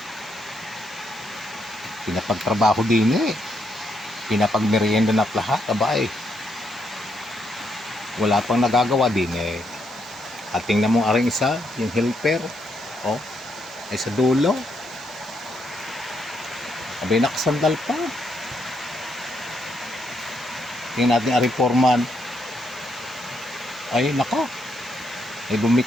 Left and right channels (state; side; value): normal; both; correlation 0.77